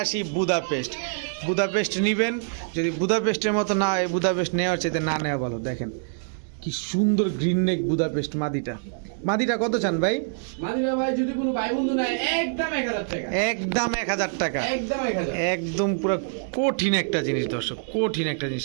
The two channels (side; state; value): left; silent; digital silence